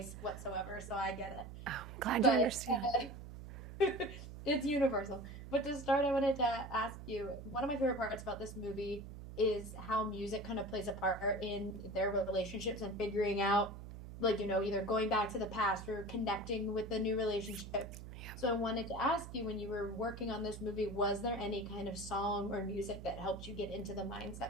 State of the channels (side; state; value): right; noise; hum, 11 dB below the sound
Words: whatsoever, so I get it. Oh, I'm glad you But understand. it's universal. But to start, I wanted to ask you, one of my favorite parts about this movie is how music kind of plays a part in their relationships and figuring out, like, either going back to the past or connecting with the new relationship. So I wanted to ask you, when you were working on this movie, was there any kind of song or music that helped you get into the